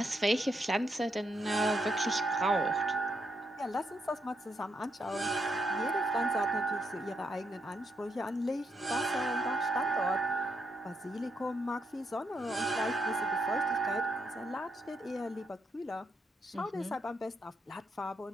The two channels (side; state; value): both; normal; correlation 0.78